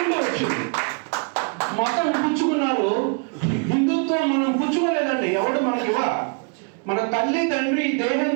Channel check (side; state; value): left; quieter; 38.5 dB